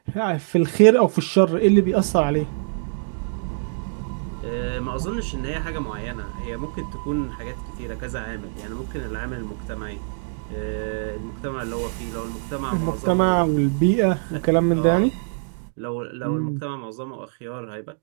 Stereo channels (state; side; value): silent; left; digital silence